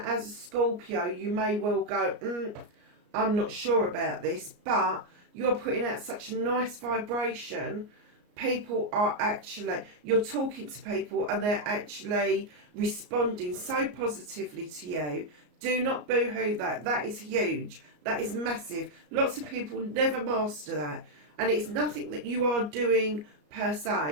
as a Scorpio, you may well go, I'm not sure about this, but you're putting out such a nice vibration. People are actually, you're talking to people and they're actually responding so positively to you. Do not boo-hoo that. That is huge. That is massive. Lots of people never master that. And it's nothing that you are doing per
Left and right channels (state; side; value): late; left; 34 ms